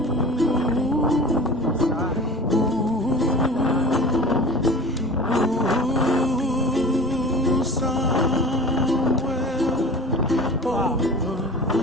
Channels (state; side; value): normal; both; correlation 0.37